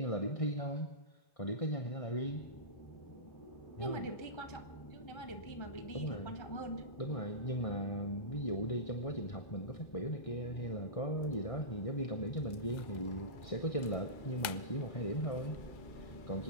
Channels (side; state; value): right; late; 2.0 ms